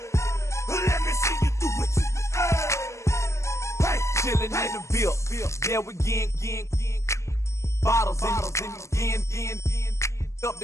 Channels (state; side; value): late; right; 0.14 ms